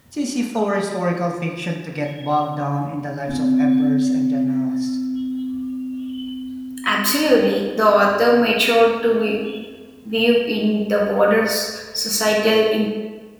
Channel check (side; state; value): both; identical; correlation 1.00